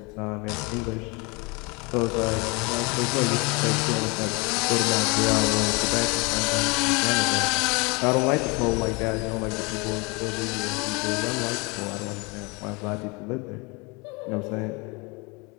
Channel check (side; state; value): right; quieter; 28.5 dB